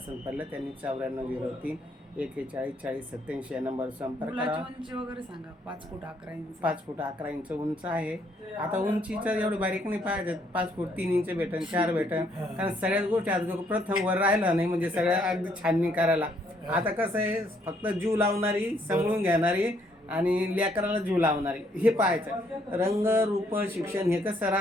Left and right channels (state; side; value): normal; both; correlation 0.69